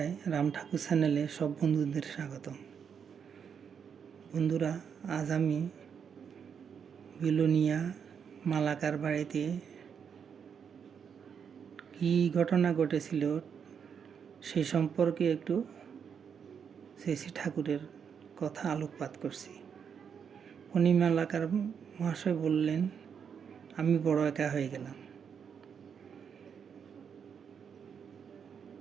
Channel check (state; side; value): quieter; left; 7.2 dB